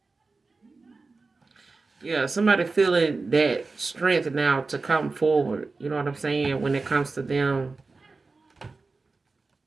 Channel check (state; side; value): quieter; left; 3.9 dB